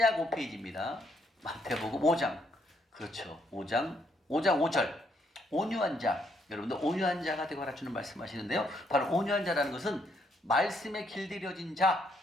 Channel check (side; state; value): both; normal; correlation 0.73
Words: 5페이지입니다. 마태복음 5장. 그렇죠. 5장 5절. 온유한 자. 여러분들 온유한 자가 되거라 주는 말씀하시는데요. 바로 온유한 자라는 것은 말씀에 길들여진 자,